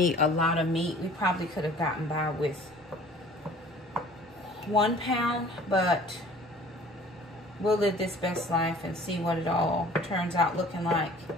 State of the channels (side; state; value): both; normal; correlation 0.49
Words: a lot of meat. We probably could have gotten by with 1 pound, but we'll live this best life and see what it all turns out looking like.